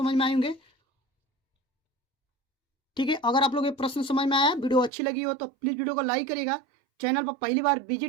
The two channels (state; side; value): drops out; left; at 4.9 s